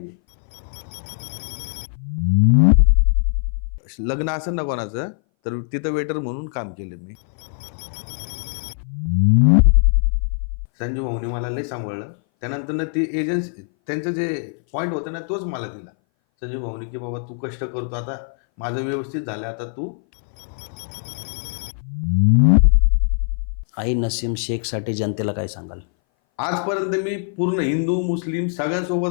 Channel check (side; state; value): right; silent; 60 dB below the other